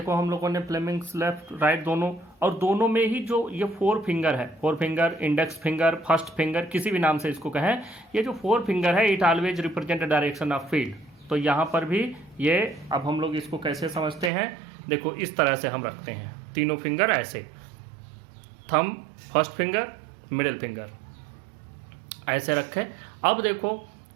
हम लोगों ने फ्लेमिंग्स लेफ्ट राइट दोनों, और दोनों में ही जो ये फोर फिंगर है, four finger, index finger, first finger, किसी भी नाम से इसको कहें, ये जो फोर फिंगर है it always represent direction of field. तो यहाँ पर भी ये, अब हम लोग इसको कैसे समझते हैं, देखो इस तरह से हम रखते हैं, तीनों फिंगर ऐसे, thumb, first finger, middle finger ऐसे रखें। अब देखो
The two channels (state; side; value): drops out; left; at 14.3 s